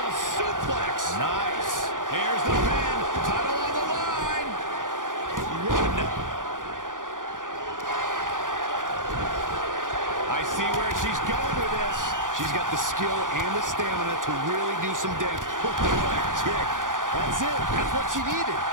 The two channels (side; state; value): left; late; 0.88 ms